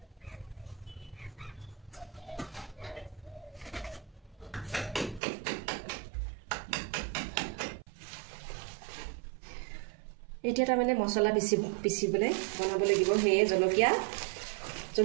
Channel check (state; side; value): drops out; left; at 5.2 s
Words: এতিয়া তাৰমানে মছলা পিচিবলৈ বনাব লাগিব সেয়ে